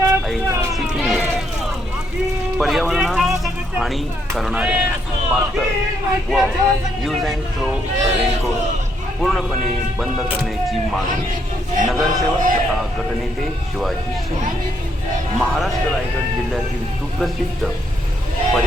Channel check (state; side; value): normal; both; correlation 0.74